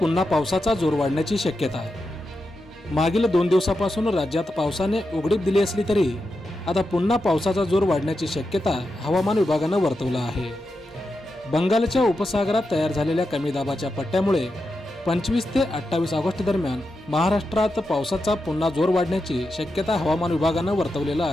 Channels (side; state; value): both; normal; correlation 0.88